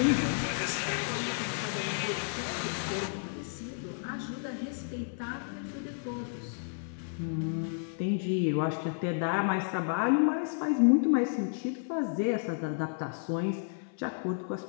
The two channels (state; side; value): silent; right; 57 dB below the other